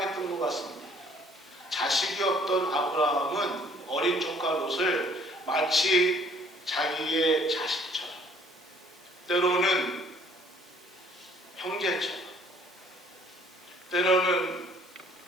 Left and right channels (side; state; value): right; noise; hiss, 28 dB below the sound